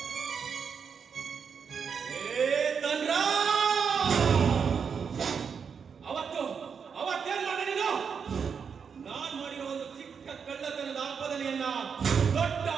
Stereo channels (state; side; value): quieter; left; 6.4 dB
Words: ಅವತ್ತೇನ್ ಮಾಡಿದೆ ನೀನು? ನಾನ್ ಮಾಡಿರೋ ಒಂದು ಚಿಕ್ಕ ಕಳ್ಳತನದ ಆಪಾದನೆಯನ್ನ ದೊಡ್ಡ